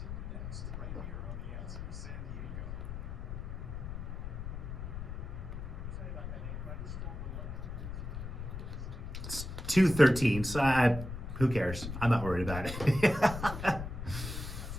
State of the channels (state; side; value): noise; left; rumble, 6 dB below the sound